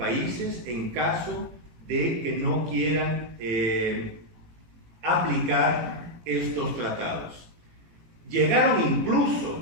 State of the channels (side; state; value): left; late; 18 ms